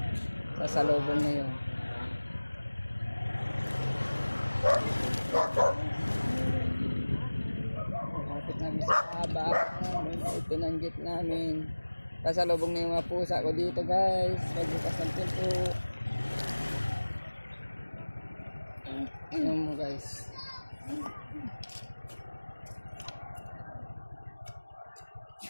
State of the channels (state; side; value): inverted; both; correlation -1.00